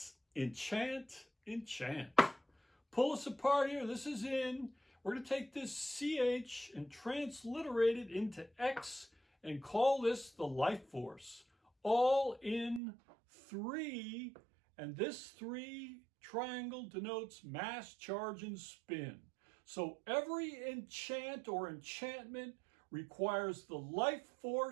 enchant. Pull us apart here. This is in. We're going to take this CH and transliterate it into X and call this the life force. All in 3, and this 3 triangle denotes mass, charge, and spin. So every enchant or enchantment requires the life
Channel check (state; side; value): drops out; left; at 12.8 s